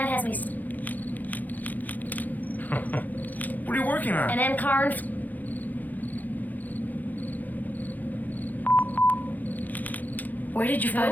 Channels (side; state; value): right; late; 0.083 ms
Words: has me What are you working on? an Ankaran. Where did you